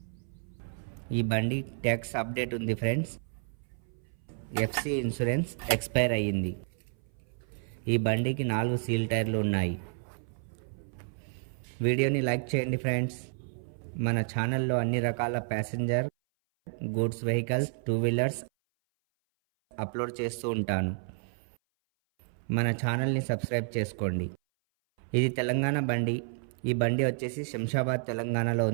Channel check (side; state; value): left; silent; 57 dB below the other